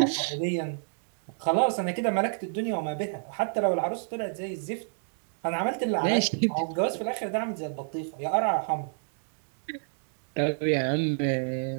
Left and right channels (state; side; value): silent; left; digital silence